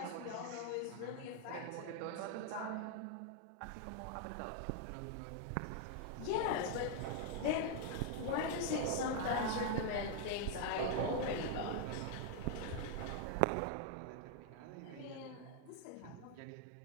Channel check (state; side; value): different; both; correlation 0.00